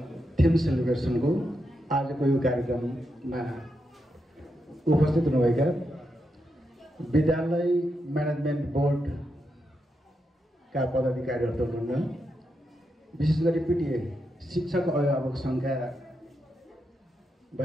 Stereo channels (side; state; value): both; normal; correlation 0.84